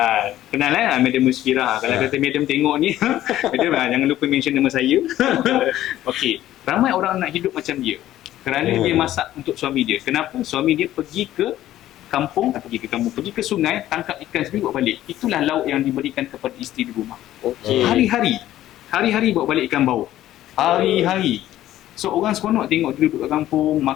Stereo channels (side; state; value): right; quieter; 13.5 dB